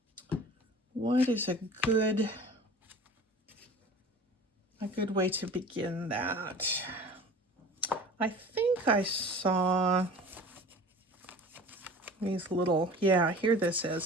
What is a good way to begin that? I think I saw these little, yeah, here this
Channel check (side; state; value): both; normal; correlation 0.41